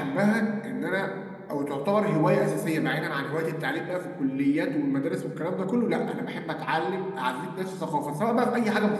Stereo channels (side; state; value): both; identical; correlation 1.00